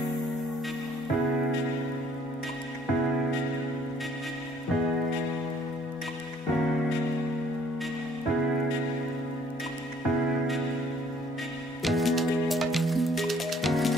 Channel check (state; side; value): normal; both; correlation 0.61